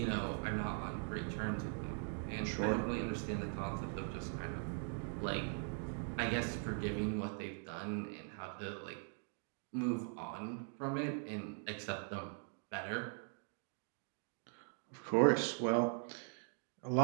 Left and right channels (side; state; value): left; silent; 50 dB below the other